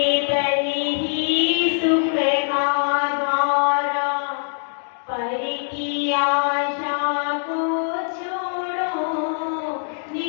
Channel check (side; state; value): right; silent; digital silence